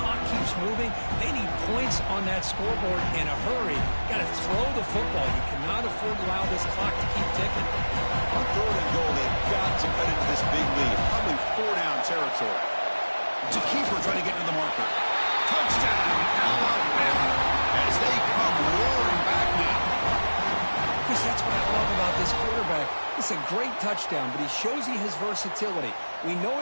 keeps moving. They need points on that scoreboard in a hurry. Got to throw the football. You cannot afford to allow this clock to keep ticking. On third and goal, they've got to cut into this big lead. Probably 4-down territory. To keeper trying to get into the marker. Touchdown, Alabama, as they come roaring back now. Chris, that's what I love about this quarterback. It's a great touchdown, but he shows you his versatility. We know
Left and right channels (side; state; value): both; inverted; correlation -1.00